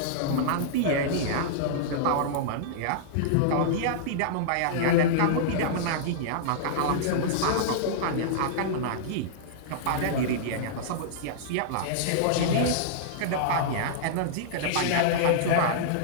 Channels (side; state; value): both; different; correlation -0.02